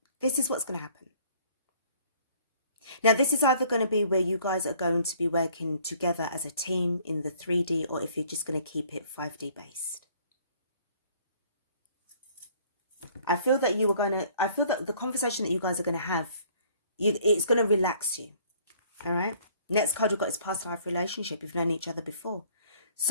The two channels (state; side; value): inverted; both; correlation -0.58